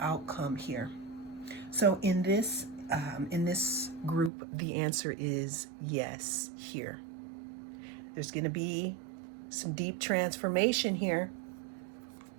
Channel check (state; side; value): drops out; left; at 4.3 s